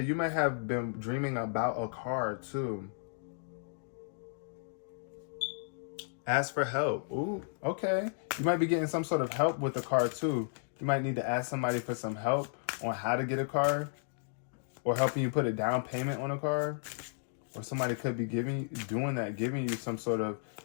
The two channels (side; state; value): right; silent; digital silence